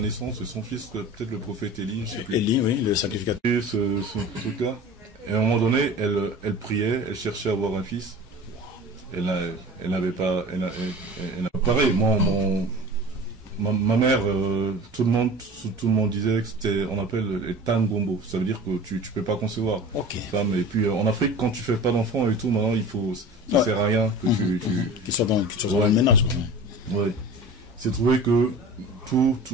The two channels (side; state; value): both; normal; correlation 0.38